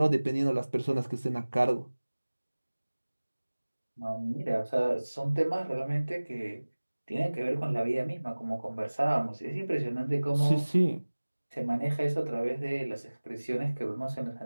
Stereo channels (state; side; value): inverted; both; correlation -1.00